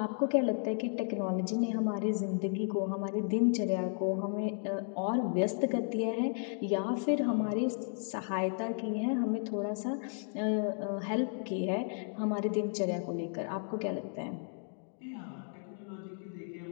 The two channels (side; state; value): right; silent; 55 dB below the other